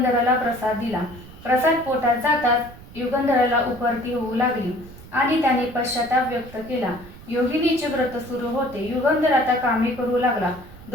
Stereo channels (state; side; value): noise; right; rumble, 18 dB below the sound